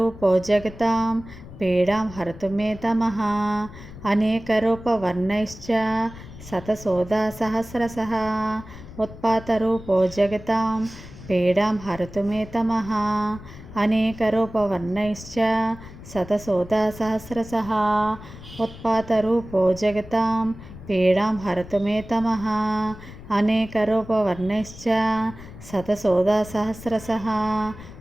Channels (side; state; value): left; noise; rumble, 16 dB below the sound